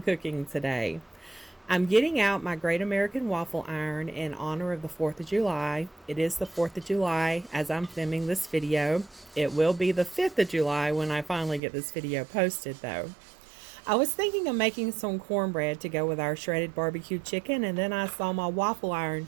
cooking today. I'm getting out my Great American Waffle Iron in honor of the 4th of July. It is the 4th of July as I'm filming this video. It will be the 5th of July when I finally get this video posted though. I was thinking of making some cornbread to go with our shredded barbecue chicken, and then I saw my waffle iron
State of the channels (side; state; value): left; drops out; at 11.6 s